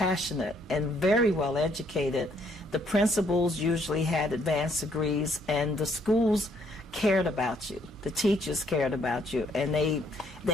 and very well educated. The principals usually had advanced degrees, and the schools cared about you. The teachers cared about you, and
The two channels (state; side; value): normal; both; correlation 0.68